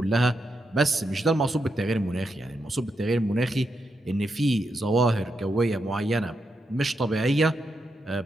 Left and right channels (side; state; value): both; normal; correlation 0.83